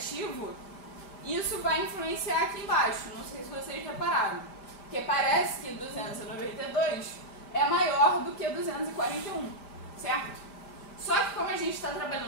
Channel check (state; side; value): late; right; 5.0 ms